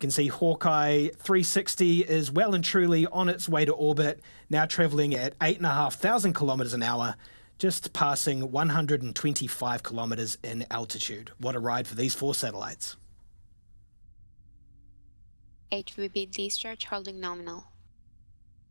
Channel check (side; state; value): both; inverted; correlation -1.00